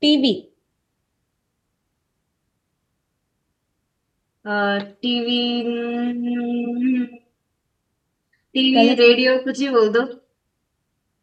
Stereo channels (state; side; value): identical; both; correlation 1.00